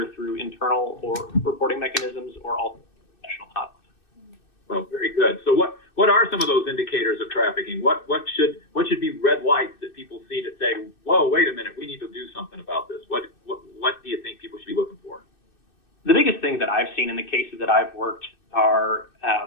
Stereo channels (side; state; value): right; late; 2.6 ms